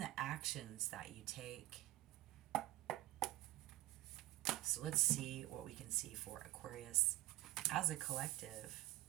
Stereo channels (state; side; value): quieter; left; 17.5 dB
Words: actions that you take. So let's see what we can see for Aquarius as a collective.